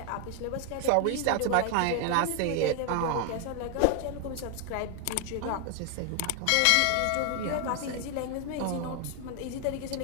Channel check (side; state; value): both; different; correlation 0.00